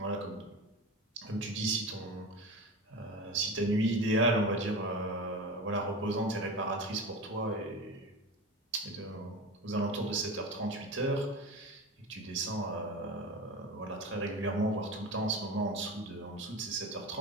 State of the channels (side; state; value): both; normal; correlation 0.28